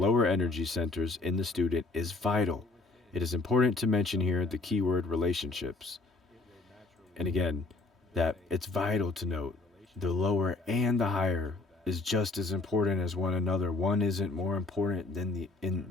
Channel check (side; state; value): right; quieter; 3.3 dB